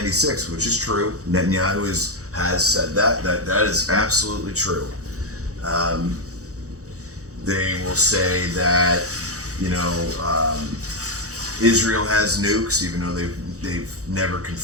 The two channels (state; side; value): late; left; 0.66 ms